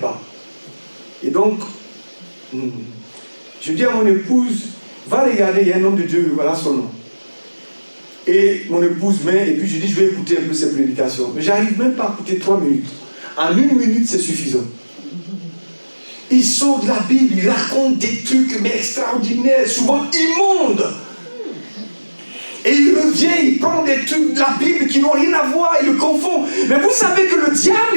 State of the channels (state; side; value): inverted; both; correlation -1.00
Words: Et donc, je dis à mon épouse, va regarder, il y a un homme de Dieu, voilà son nom. Et mon épouse vient, et puis je dis, je vais écouter un peu ses prédications. Mais j'arrive même pas à écouter 3 minutes. En 1 minute, c'est suffisant. Il sort de la Bible, il raconte des trucs mais extraordinaires, souvent immondes. Et il revient, il prend des trucs de la Bible qui n'ont rien à voir, il le confond. Mais vous savez que le diable,